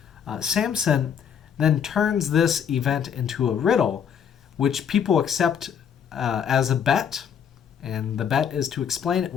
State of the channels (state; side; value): quieter; right; 8.0 dB